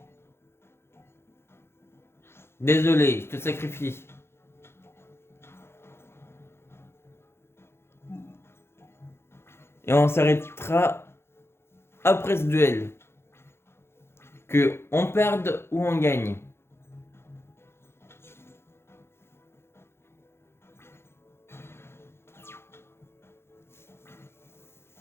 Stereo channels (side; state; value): right; late; 0.12 ms